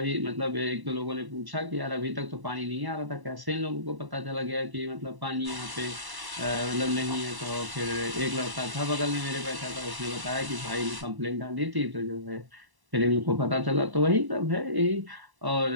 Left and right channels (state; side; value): late; left; 1.0 ms